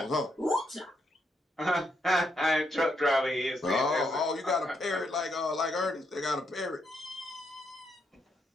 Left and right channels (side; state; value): both; normal; correlation 0.78